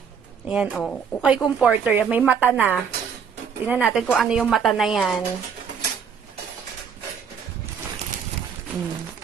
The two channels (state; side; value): quieter; left; 6.9 dB